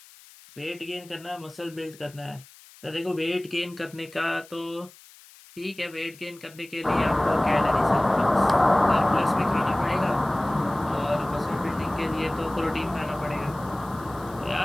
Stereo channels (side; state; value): left; noise; hiss, 23 dB below the sound